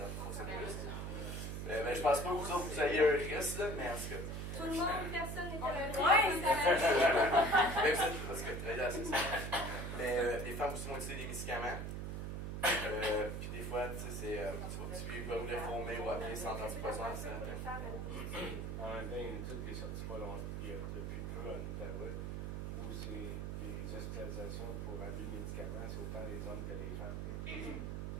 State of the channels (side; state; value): right; noise; hum, 4 dB below the sound